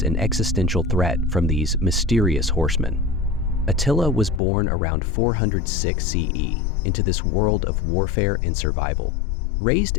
an existential threat from these mysterious horsemen. Attila was born around 406 CE into this world of warfare and survival. Raised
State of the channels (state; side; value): drops out; right; at 4.4 s